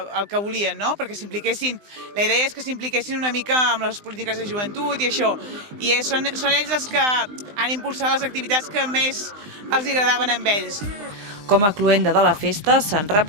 el que volien, no? Perquè s'impliquessin, la idea és que s'impliquessin una mica amb les polítiques de joventut i això, i són ells els que han impulsat les activitats que més els agradaven a ells.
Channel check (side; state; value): left; late; 20 ms